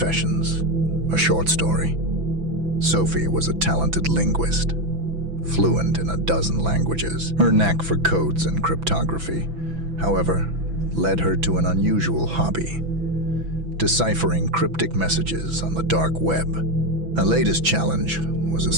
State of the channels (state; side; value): late; left; 6.0 ms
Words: a short story. Sophie was a talented linguist, fluent in a dozen languages. Her knack for codes and cryptography, however, led her to an unusual hobby: deciphering cryptic messages on the dark web. Her latest challenge was a